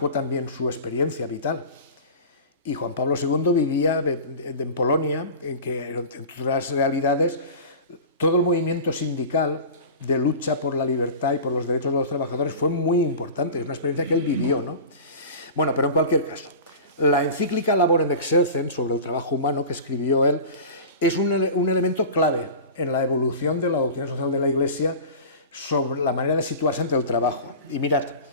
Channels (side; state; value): both; inverted; correlation -0.34